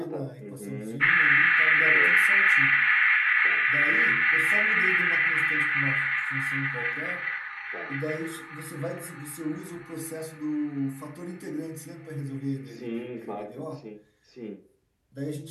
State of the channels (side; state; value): both; identical; correlation 1.00